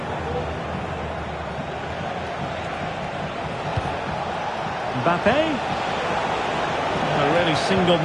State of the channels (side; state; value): both; identical; correlation 1.00